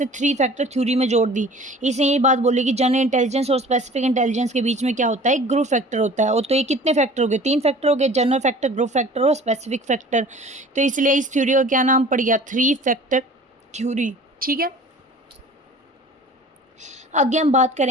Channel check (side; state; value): both; normal; correlation 0.45